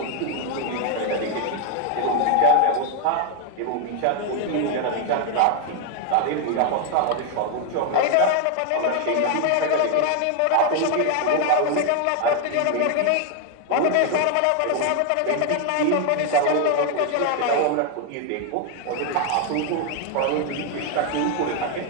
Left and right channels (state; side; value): different; both; correlation 0.01